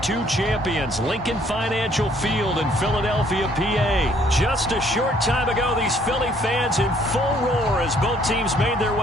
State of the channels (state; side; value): normal; both; correlation 0.63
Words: champions, Lincoln Financial Field in Philadelphia, PA. Just a short time ago, these Philly fans in full roar as both teams made their